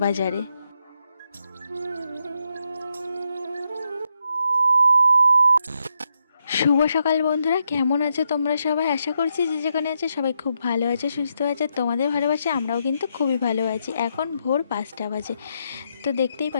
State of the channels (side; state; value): both; inverted; correlation -0.81